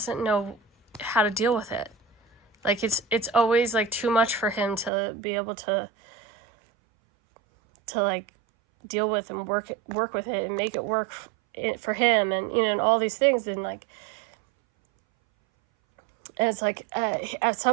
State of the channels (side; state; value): left; drops out; at 4.9 s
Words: know how to deal with it. Like it's always like too much for him to be able to like deal with and work with it and make it work for him, and and all these things. And like, and it's like at